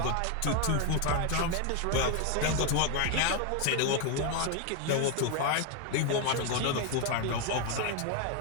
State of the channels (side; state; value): both; different; correlation 0.01